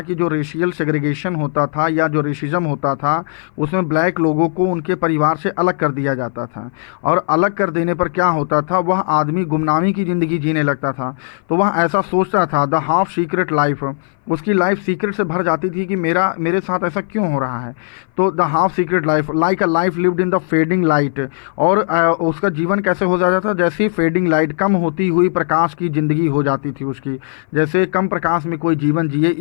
कि जो रेशियल सेग्रीगेशन होता था या जो रेसिज्म होता था, उसमें ब्लैक लोगों को उनके परिवार से अलग कर दिया जाता था, और अलग कर देने पर क्या होता था, वह आदमी गुमनामी की ज़िंदगी जीने लगता था। तो वह ऐसा सोचता था, द हाफ सीक्रेट लाइफ, उसकी लाइफ सीक्रेट से भर जाती थी कि मेरे साथ ऐसा क्यों हो रहा है। तो the half secret life like a life lived in the fading light, और उसका जीवन कैसे हो जाता था, जैसे फेडिंग लाइट, कम होती हुई प्रकाश की ज़िंदगी हो जाती थी उसकी, जैसे कम प्रकाश में कोई जीवन जिए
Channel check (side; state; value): right; silent; 59 dB below the other